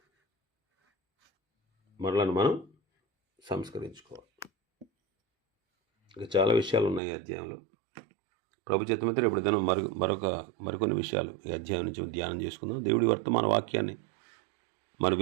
ఇంకా చాలా విషయాలు ఉన్నాయి ఈ అధ్యాయంలో. ప్రభు చిత్తమైతే ఇప్పుడు దినం మరికొన్ని విషయాలు ఈ అధ్యాయం నుంచి ధ్యానం చేసుకుందాం. దేవుడి వర్తమాన వాక్యాన్ని మన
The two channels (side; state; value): left; drops out; at 7.0 s